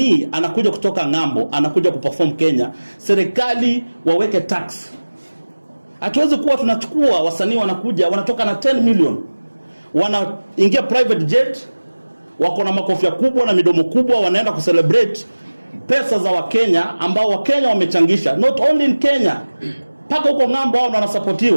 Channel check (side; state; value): both; inverted; correlation -1.00